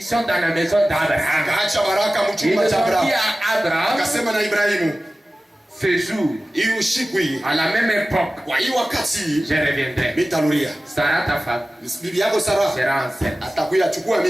dans la maison d'Abraham. Ils ont dit à Abraham, ce jour, à la même époque, je reviendrai. Sarah, ta femme, sera enceinte.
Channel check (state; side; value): normal; both; correlation 0.96